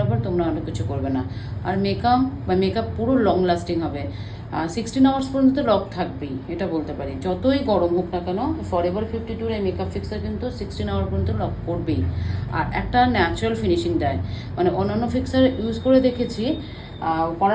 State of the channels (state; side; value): identical; both; correlation 1.00